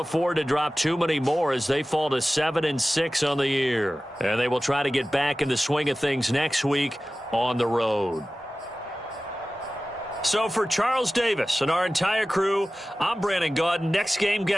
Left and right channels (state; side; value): normal; both; correlation 0.96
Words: afford to drop too many more as they fall to 7-6 on the year, and they will try to get back in the swing of things next week on the road. So for Charles Davis and our entire crew, I'm Brandon Gaudin. Next game,